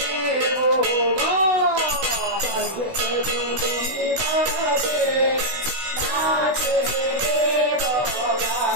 স্বর্গে ধুমধুবি বাজে নাচে দেবগণ,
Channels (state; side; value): late; left; 16 ms